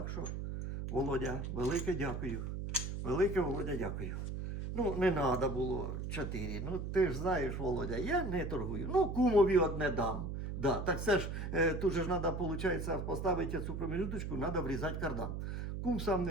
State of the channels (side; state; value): right; noise; hum, 4 dB below the sound